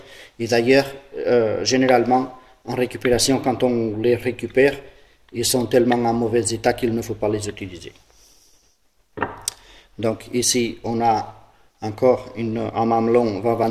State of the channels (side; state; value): both; identical; correlation 1.00